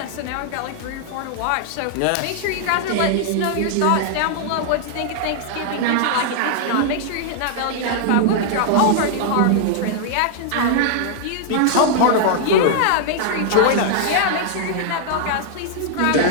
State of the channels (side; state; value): both; different; correlation -0.01